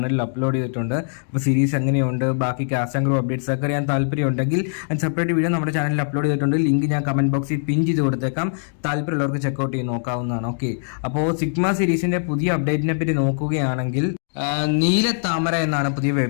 അപ്ലോഡ് ചെയ്തിട്ടുണ്ട്. അപ്പോൾ സീരീസ് എങ്ങനെയുണ്ട്, ബാക്കി കാസ്റ്റ് ആൻഡ് ക്രൂ അപ്ഡേറ്റ്സ് ഒക്കെ അറിയാൻ താല്പര്യമുണ്ടെങ്കിൽ സെപ്പറേറ്റ് വീഡിയോ നമ്മുടെ ചാനലിൽ അപ്ലോഡ് ചെയ്തിട്ടുണ്ട്. ലിങ്ക് ഞാൻ കമന്റ് ബോക്സിൽ പിൻ ചെയ്ത് കൊടുത്തേക്കാം. താല്പര്യമുള്ളവർക്ക് ചെക്കൗട്ട് ചെയ്ത് നോക്കാവുന്നതാണ്. ഓക്കെ, അപ്പോൾ സിഗ്മ സീരീസിന്റെ പുതിയ അപ്ഡേറ്റിനെ പറ്റി നോക്കുകയാണെങ്കിൽ നീലത്താമര എന്നാണ് പുതിയ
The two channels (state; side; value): silent; right; digital silence